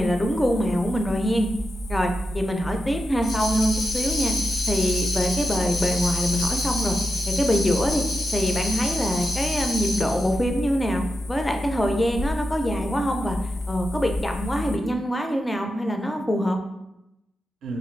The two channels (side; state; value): both; normal; correlation 0.89